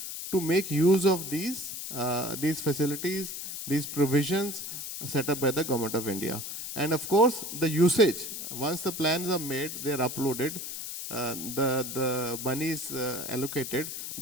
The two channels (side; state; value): left; noise; hiss, 7 dB below the sound